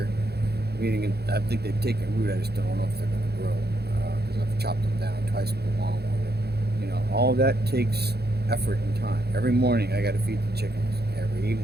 Meaning, I think they've taken root. I just don't know if they're going to grow because I've chopped them down twice with a lawnmower. All that takes effort and time. Every morning I got to feed the chickens. Every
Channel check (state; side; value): late; left; 0.47 ms